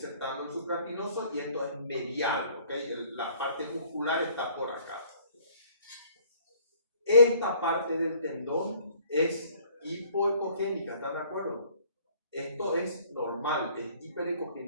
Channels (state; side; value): inverted; both; correlation -0.58